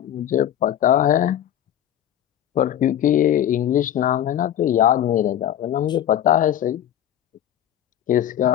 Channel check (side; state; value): right; quieter; 11.0 dB